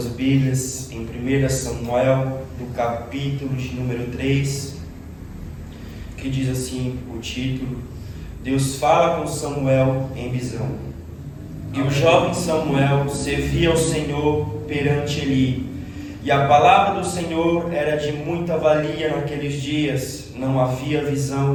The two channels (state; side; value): identical; both; correlation 1.00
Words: Bíblias em 1 Samuel, do capítulo de número 3, que diz assim o título: Deus fala com Samuel em visão. E o jovem Samuel servia ao Senhor perante Eli, e a palavra do Senhor era de muita valia naqueles dias, não havia visão